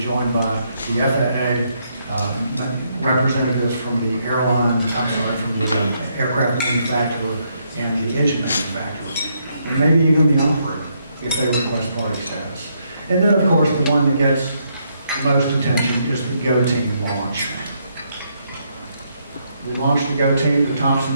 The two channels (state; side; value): inverted; both; correlation -0.75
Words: joined by the FAA, representatives from the from the aircraft manufacturer and the engine manufacturer, and maybe even the operator if they request party status. And then of course the one that gets the most attention is the GO team launch. We launched the GO team to